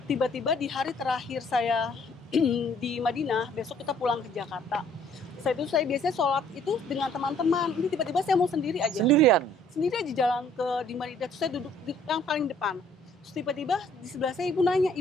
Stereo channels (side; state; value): both; normal; correlation 0.60